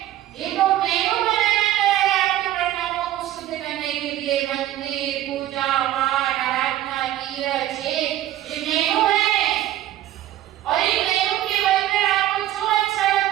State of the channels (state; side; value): quieter; left; 13.4 dB